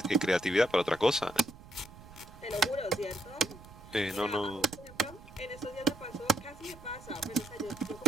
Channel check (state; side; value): noise; right; rumble, 18 dB below the sound